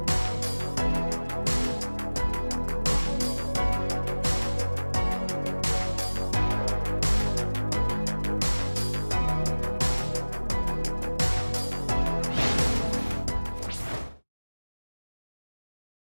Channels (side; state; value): both; inverted; correlation -1.00